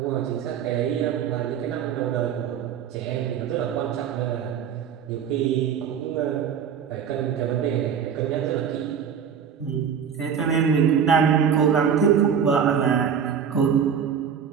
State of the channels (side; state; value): left; quieter; 7.7 dB